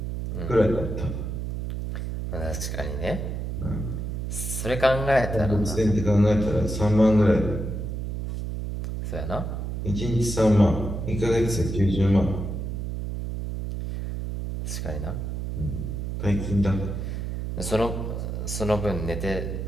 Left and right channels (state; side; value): noise; right; hum, 4 dB below the sound